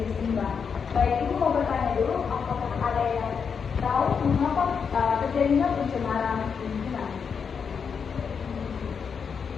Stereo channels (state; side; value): quieter; right; 6.3 dB